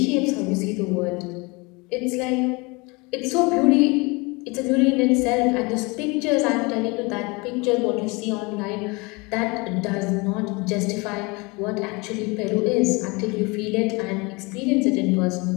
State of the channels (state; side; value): quieter; right; 26.8 dB